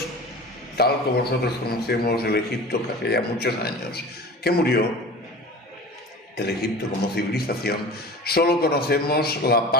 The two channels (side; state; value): both; normal; correlation 0.36